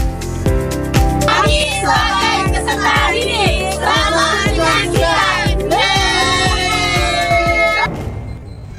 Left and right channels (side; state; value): both; identical; correlation 1.00